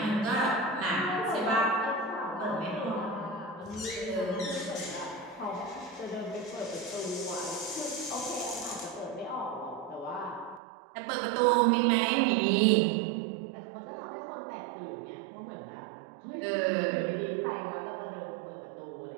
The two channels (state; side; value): drops out; left; at 10.6 s